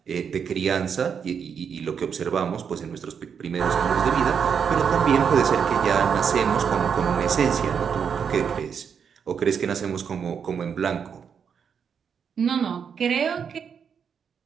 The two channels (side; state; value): left; quieter; 7.0 dB